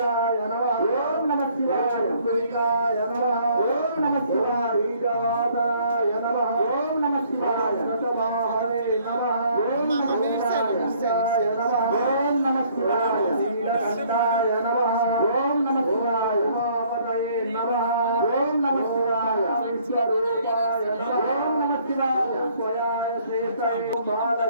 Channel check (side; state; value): both; inverted; correlation -0.61